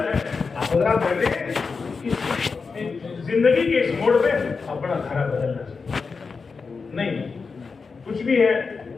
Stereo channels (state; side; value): quieter; right; 4.8 dB